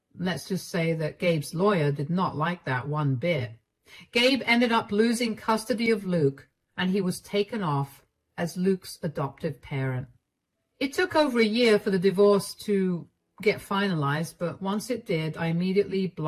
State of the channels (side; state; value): both; identical; correlation 1.00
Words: let's just say that Gabe's lawyer did not like that one bit. Gabe ended up losing custody of Luke, and he was taken off as Luke's adoptive parent. It took over a year for the divorce to get finalized, but once it did, I immediately